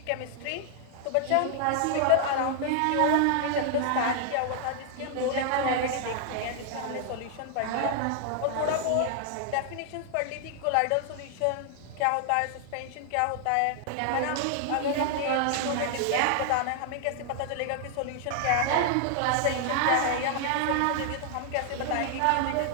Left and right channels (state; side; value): different; both; correlation 0.00